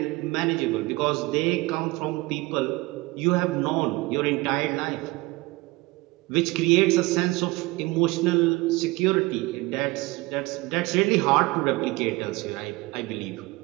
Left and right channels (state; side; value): quieter; left; 22.2 dB